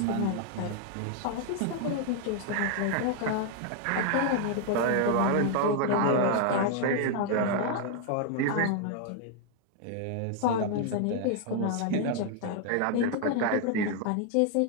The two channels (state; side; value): different; both; correlation 0.00